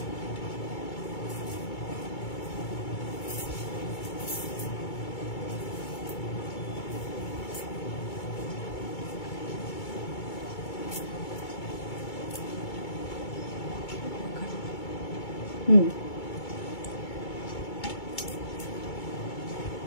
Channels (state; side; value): late; right; 2.3 ms